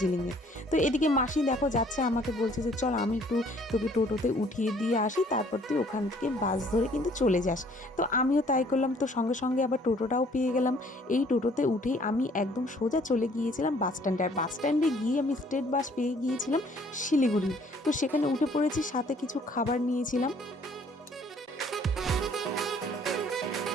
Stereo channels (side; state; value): both; normal; correlation 0.59